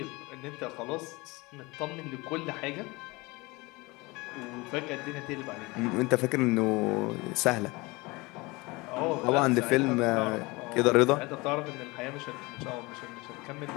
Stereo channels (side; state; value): right; quieter; 24.0 dB